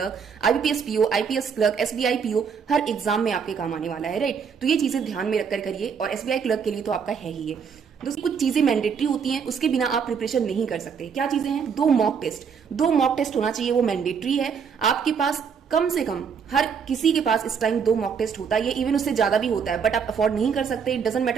IBPS PO, IPS clerk, SBI PO, हर एग्जाम में आपके काम आने वाला है। राइट, तो ये चीजें ध्यान में रखकर करिए, और एसबीआई क्लर्क के लिए तो आपका है ही है। दोस्तों, कुछ चीजें मैंडेटरी होती हैं, उसके बिना आप प्रिपरेशन नहीं कर सकते। क्या चीजें हैं? 2 मॉक टेस्ट, 2 मॉक टेस्ट होना चाहिए, वो मैंडेटरी है। आपके पास कम से कम, हर किसी के पास इस टाइम 2 मॉक टेस्ट होता है, इवन उससे ज्यादा भी होता है, बट आप अफोर्ड नहीं कर सकते, it doesn't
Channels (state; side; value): quieter; left; 6.6 dB